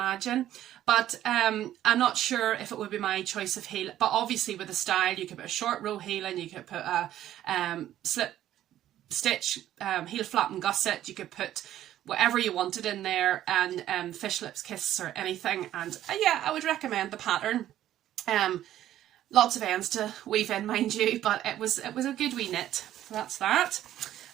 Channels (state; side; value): quieter; left; 12.5 dB